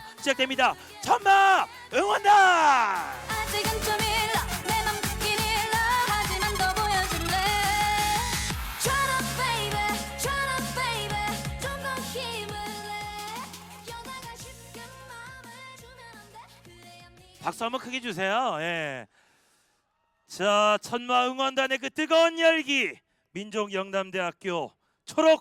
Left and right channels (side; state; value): both; identical; correlation 1.00